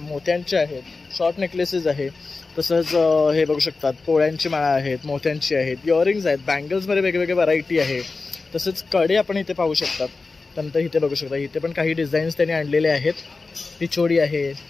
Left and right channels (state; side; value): quieter; right; 3.9 dB